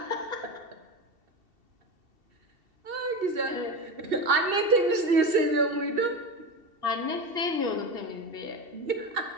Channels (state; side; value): late; left; 2.7 ms